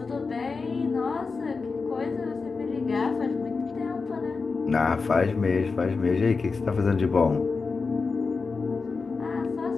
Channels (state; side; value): quieter; right; 4.5 dB